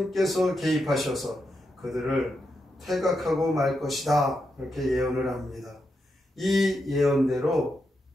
개입하셔서 그들을 퇴각하고 말 것이다, 이렇게 예언을 합니다. 이 예언대로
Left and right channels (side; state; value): both; normal; correlation 0.84